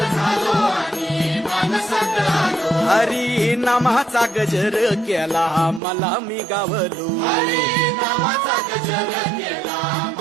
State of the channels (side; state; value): left; drops out; at 5.8 s